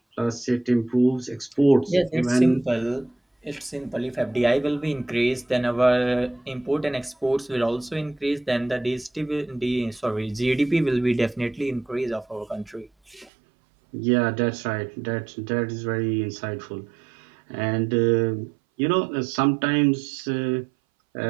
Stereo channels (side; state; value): left; drops out; at 13.3 s